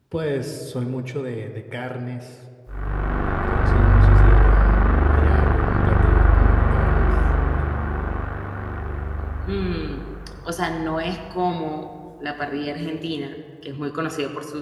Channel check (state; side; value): identical; both; correlation 1.00